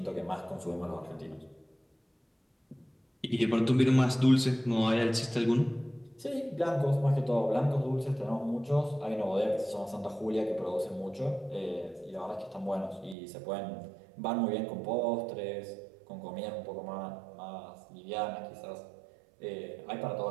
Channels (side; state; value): left; drops out; at 13.2 s